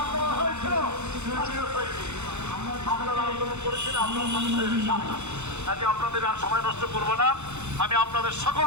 আপনাদের আর সময় নষ্ট করবো না। আমি আপনাদের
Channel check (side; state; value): left; late; 0.82 ms